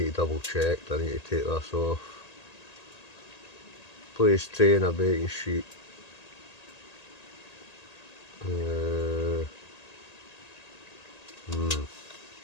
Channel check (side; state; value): right; late; 1.8 ms